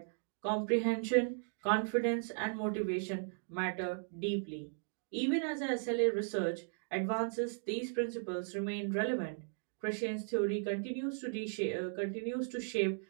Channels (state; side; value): silent; left; digital silence